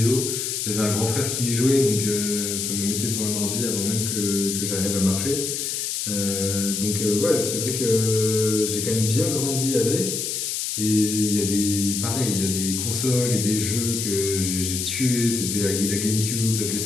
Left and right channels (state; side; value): noise; left; hiss, 2 dB below the sound